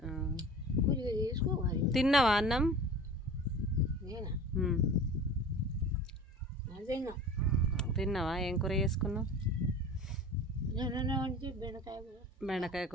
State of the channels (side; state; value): both; normal; correlation 0.39